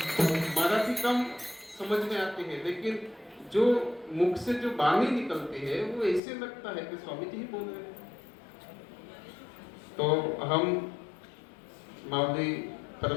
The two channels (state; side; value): drops out; right; at 6.2 s